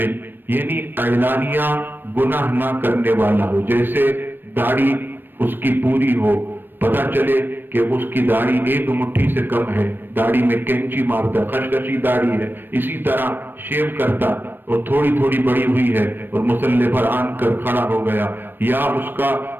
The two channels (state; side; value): late; left; 0.095 ms